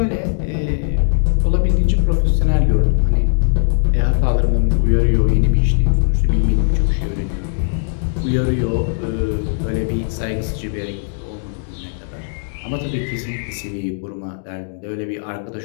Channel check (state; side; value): silent; right; digital silence